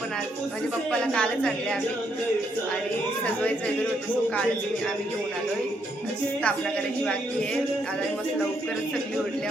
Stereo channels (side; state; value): both; normal; correlation 0.75